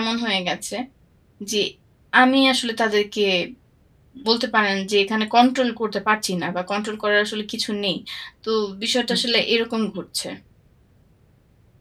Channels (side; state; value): both; identical; correlation 1.00